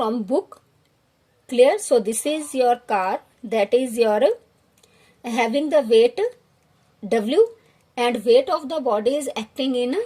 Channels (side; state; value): both; identical; correlation 1.00